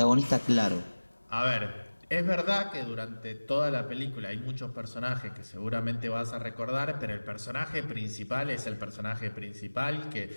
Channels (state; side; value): inverted; both; correlation -1.00